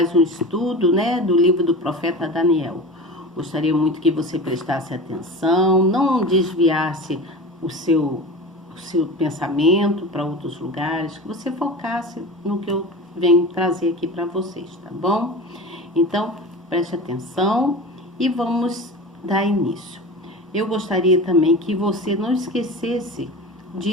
um estudo, do livro do profeta Daniel. Gostaria muito que você prestasse atenção, não desviasse o seu pensamento para outros lugares, que você focasse no que eu venho trazer aqui para vocês, tá bom? Então, preste atenção e vamos dar início. Eu gostaria também que você não esquecesse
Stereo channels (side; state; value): both; normal; correlation 0.31